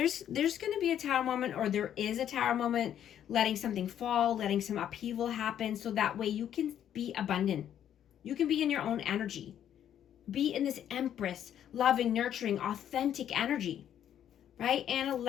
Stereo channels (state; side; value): quieter; right; 10.1 dB